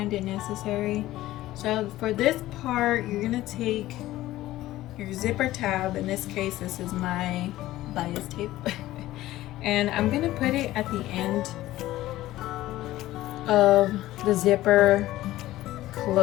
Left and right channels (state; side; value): quieter; right; 15.7 dB